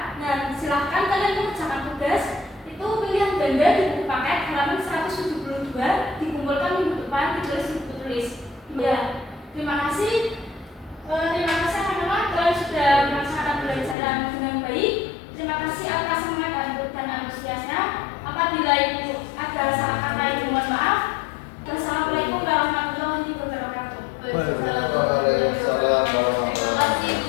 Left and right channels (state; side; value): drops out; right; at 14.0 s